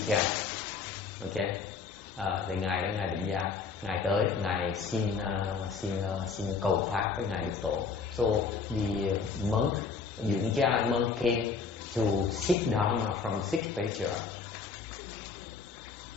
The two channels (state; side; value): quieter; right; 5.1 dB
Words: Cha. Okay, thì ngài Vĩnh Gia, ngài tới, ngài xin cầu pháp với ngài Lục Tổ. So the monk Dụng Cha monk came to seek Dharma from Six Patriarchs.